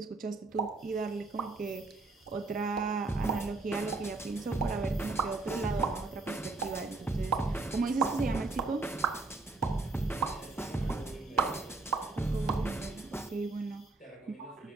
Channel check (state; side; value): quieter; left; 3.5 dB